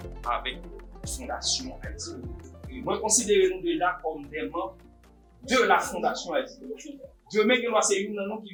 avec la Fondation Haïti. Et moi, considérez-nous déjà comme des membres de la Fondation Haïti. Demain, c'est une nom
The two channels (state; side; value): identical; both; correlation 1.00